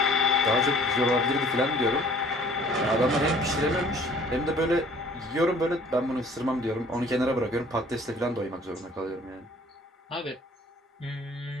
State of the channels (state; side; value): normal; both; correlation 0.54